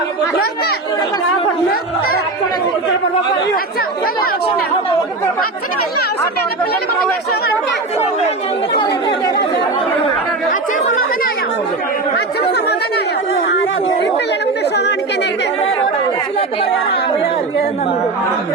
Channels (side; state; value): left; quieter; 3.3 dB